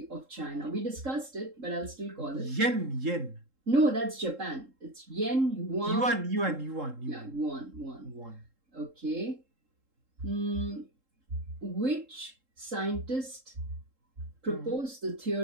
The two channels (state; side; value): late; left; 3.7 ms